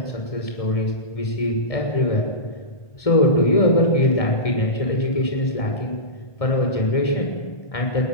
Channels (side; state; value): right; late; 1.7 ms